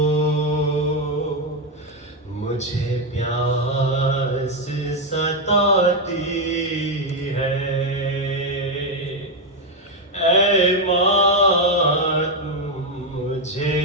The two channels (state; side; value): normal; both; correlation 0.04